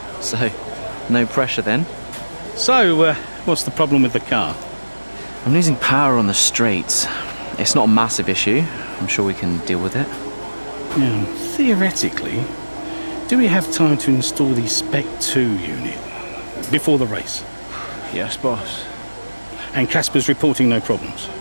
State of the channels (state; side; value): inverted; both; correlation -1.00